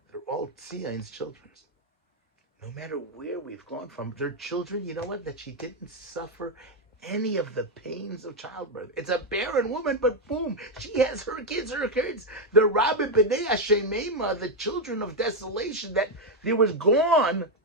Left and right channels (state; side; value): normal; both; correlation 0.03